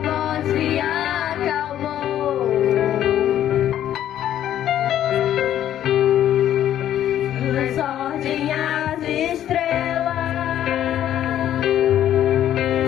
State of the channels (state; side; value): quieter; right; 11.3 dB